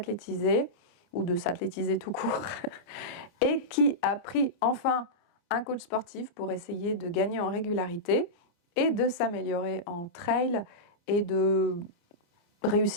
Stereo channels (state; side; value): late; right; 29 ms